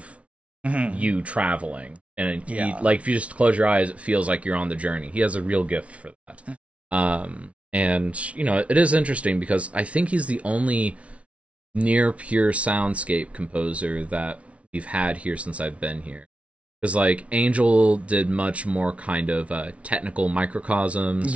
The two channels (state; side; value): late; left; 0.063 ms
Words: you traveling. And like, if you just close your eyes, it feels like you're on the journey. He has a real gift for that. And, it is interesting because I think he's the only near pure soundscape composer that we've had here since I've been here. Because, like, Angel did much more kind of technical microcosms.